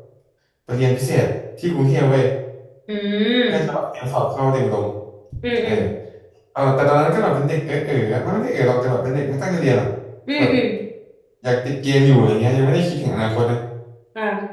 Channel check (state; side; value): identical; both; correlation 1.00